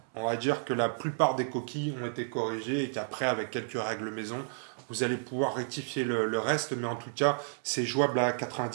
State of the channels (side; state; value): left; silent; 56 dB below the other